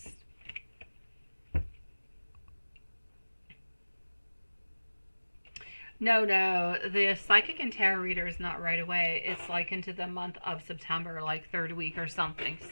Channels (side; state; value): both; inverted; correlation -1.00